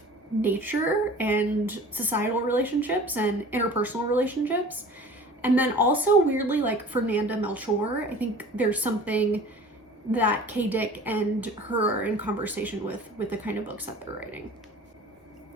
nature and societal relationships and interpersonal relationships, and then also weirdly like Fernanda Melchor. I think there's something that Kay Dick and her are in conversation with the kind of books that they're writing.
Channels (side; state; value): both; normal; correlation 0.43